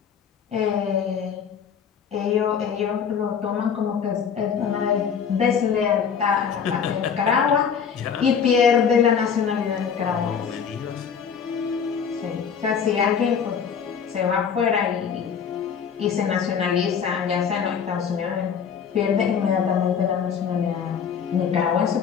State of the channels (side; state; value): right; quieter; 7.1 dB